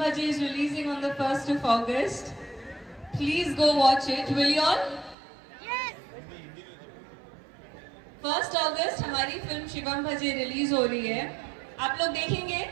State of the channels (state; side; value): drops out; left; at 5.2 s